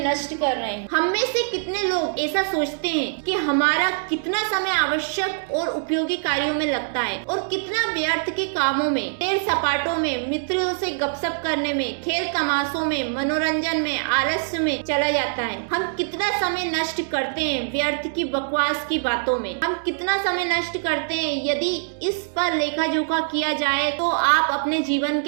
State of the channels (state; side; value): silent; left; digital silence